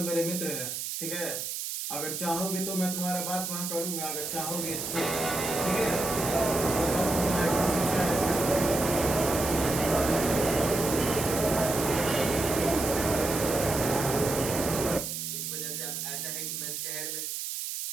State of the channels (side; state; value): right; noise; hiss, 4 dB below the sound